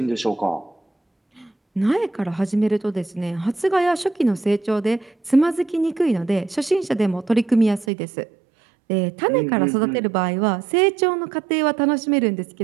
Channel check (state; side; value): drops out; left; at 7.9 s